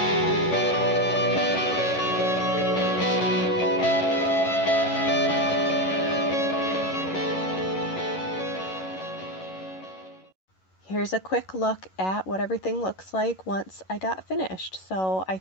Here's a quick look at what everything looks like once I got finished. So I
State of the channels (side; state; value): right; late; 11 ms